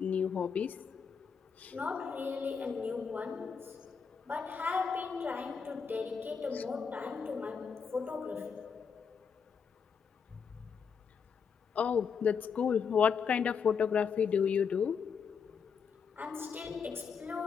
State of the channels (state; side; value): quieter; right; 6.3 dB